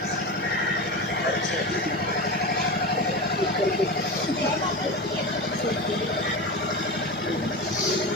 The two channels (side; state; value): both; normal; correlation 0.24